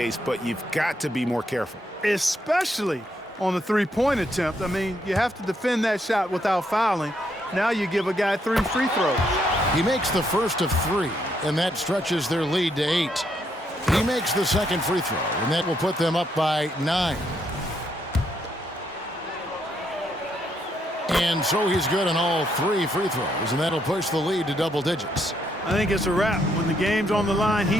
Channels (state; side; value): normal; both; correlation 0.75